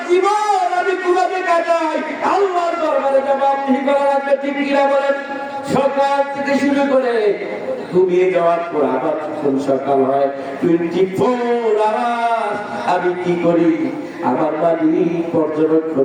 জীবন আমি কিভাবে কাটাই আল্লাহর দরবারে জবাবদিহি করা লাগবে। ঠিক কিনা বলেন? সকাল থেকে শুরু করে ঘুমিয়ে যাওয়ার পর আবার যখন সকাল হয়, 24 আওয়ার আমি কি করি আমার মালিক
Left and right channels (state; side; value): identical; both; correlation 1.00